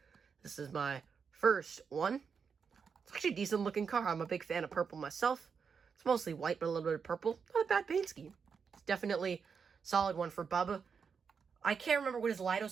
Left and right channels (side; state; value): left; quieter; 6.0 dB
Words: This is my first one. It's actually a decent looking car. I'm a big fan of purple myself. It's mostly white, but a little bit of purple. Not a bad paint scheme. It's definitely a solid one for Bubba. I can't remember what his